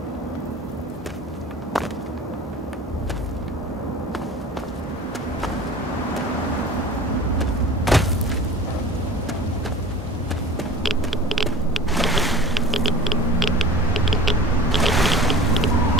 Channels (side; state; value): both; normal; correlation 0.40